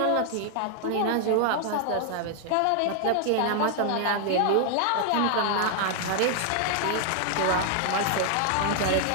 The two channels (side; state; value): both; different; correlation 0.00